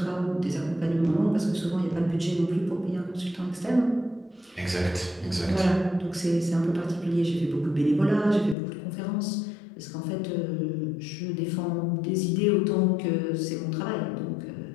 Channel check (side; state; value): right; drops out; at 8.6 s